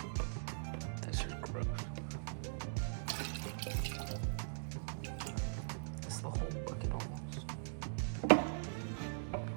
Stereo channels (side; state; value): left; silent; digital silence